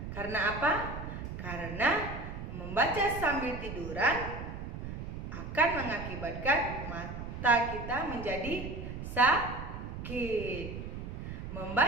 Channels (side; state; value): right; noise; rumble, 7 dB below the sound